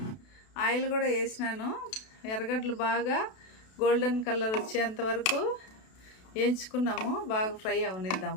ఆయిల్ కూడా వేసినాను. ఎర్రగడ్డలు బాగా గోల్డెన్ కలర్ వచ్చేంత వరకు వేయించుకున్నాము. బాగా ఫ్రై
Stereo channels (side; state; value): right; late; 32 ms